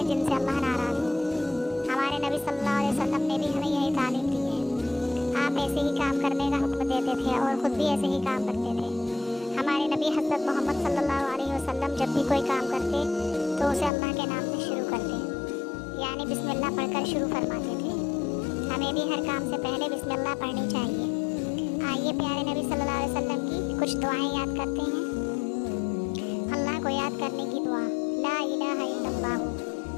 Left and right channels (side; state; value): right; drops out; at 13.9 s